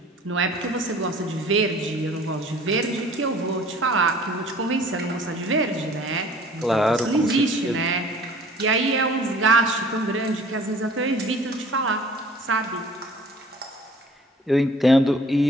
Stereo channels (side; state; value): both; normal; correlation 0.50